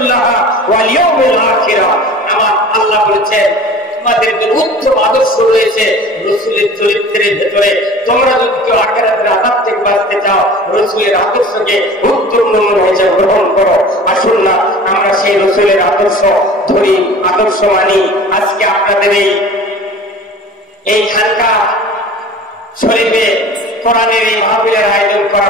ওয়াল ইয়াউমিল আখির। আমার আল্লাহ বলেছেন তোমাদের যে উত্তম আদর্শ রয়েছে রাসূলের চরিত্রের ভেতরে। তোমরা যদি কেউ আখিরাতের আযাব থেকে বাঁচতে চাও, রাসূলের আদর্শকে উত্তম নমুনা হিসেবে গ্রহণ করো। আসুন না আমরা সেই রাসূলের আদর্শ ধরি, আদর্শ মানি। আজকে আপনাদের এই খানকা শরীফে কোরআনের এই মাহফিলের আয়োজন করা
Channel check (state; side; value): normal; both; correlation 0.41